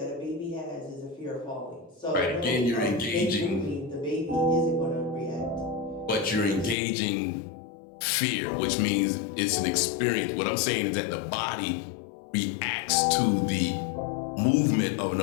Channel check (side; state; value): right; drops out; at 6.8 s